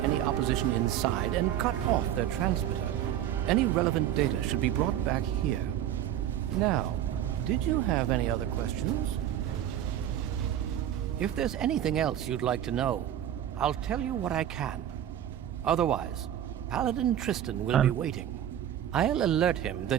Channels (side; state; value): left; quieter; 11.1 dB